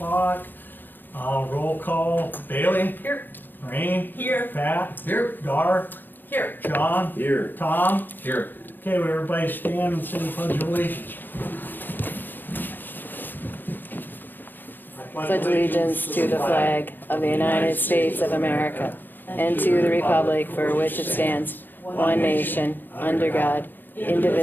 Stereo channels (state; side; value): late; right; 0.091 ms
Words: Roll call. Bailey? Here. Rain? Here. Pat? Here. Dar? Here. John? Here. Tom? Here. Okay, would everybody stand and say the pledge of allegiance? Pledge allegiance to the flag of the United States of America and to the republic for which it stands, one nation, under God,